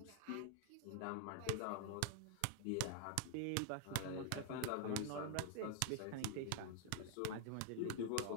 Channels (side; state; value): both; different; correlation 0.00